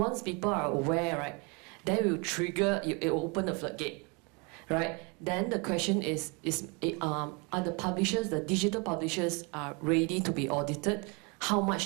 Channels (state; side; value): quieter; left; 31.0 dB